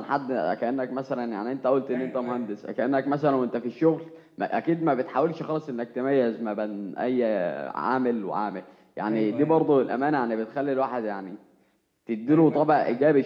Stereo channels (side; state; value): both; identical; correlation 1.00